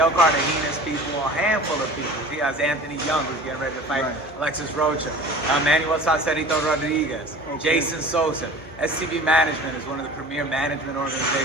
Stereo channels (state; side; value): normal; both; correlation 0.41